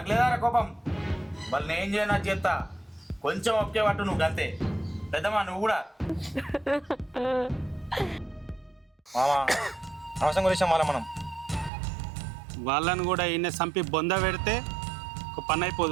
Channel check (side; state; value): left; drops out; at 11.7 s